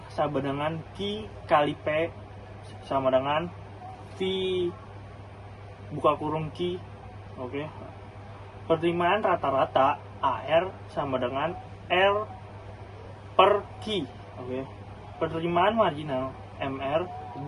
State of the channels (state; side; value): identical; both; correlation 1.00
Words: sama dengan Q kali P sama dengan V buka kurung Q. Oke. Penerimaan rata-rata AR sama dengan R per Q. Oke. Penerimaan marginal MR